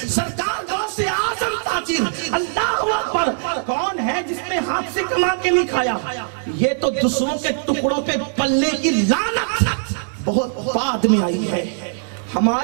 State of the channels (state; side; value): silent; left; digital silence